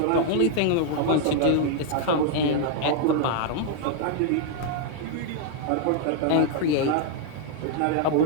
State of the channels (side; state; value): both; different; correlation 0.00